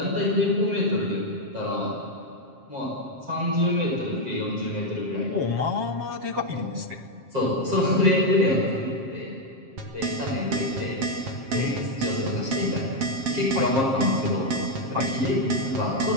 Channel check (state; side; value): late; left; 7.5 ms